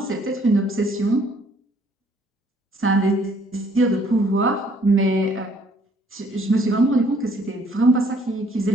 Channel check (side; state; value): both; normal; correlation 0.62